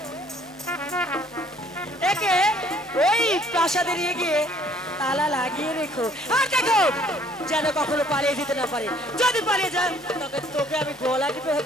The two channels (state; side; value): normal; both; correlation 0.59